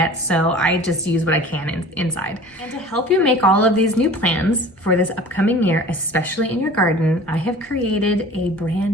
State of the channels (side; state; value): both; normal; correlation 0.43